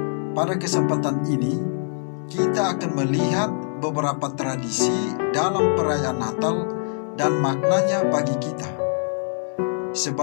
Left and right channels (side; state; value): right; silent; 63 dB below the other